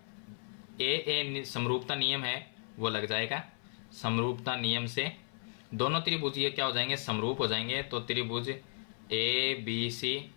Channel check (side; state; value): right; silent; 55 dB below the other